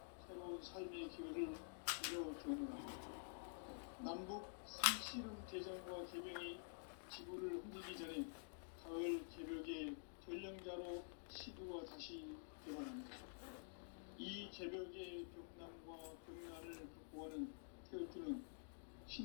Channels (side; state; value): right; silent; digital silence